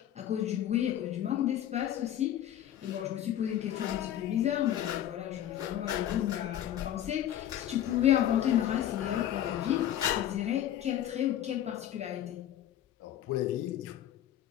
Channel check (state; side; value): quieter; right; 11.5 dB